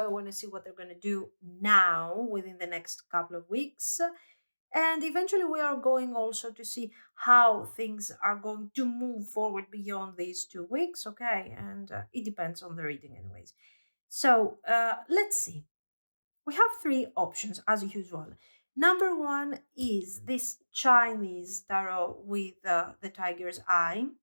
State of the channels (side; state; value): both; inverted; correlation -1.00